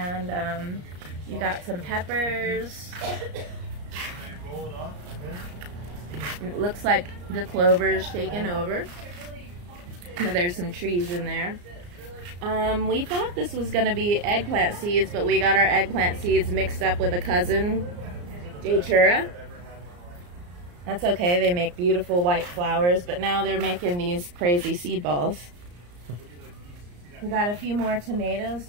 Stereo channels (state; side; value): late; left; 34 ms